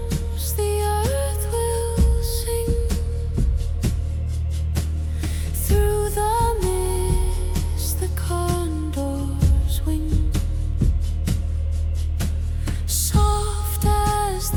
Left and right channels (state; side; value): identical; both; correlation 1.00